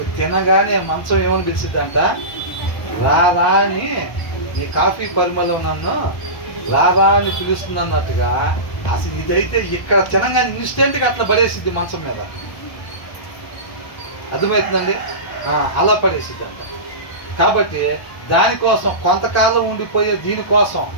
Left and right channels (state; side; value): late; right; 1.3 ms